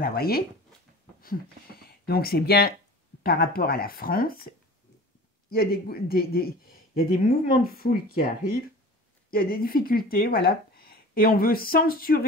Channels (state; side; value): normal; both; correlation 0.39